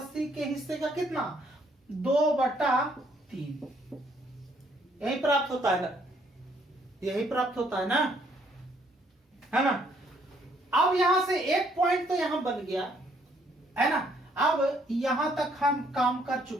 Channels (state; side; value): normal; both; correlation 0.67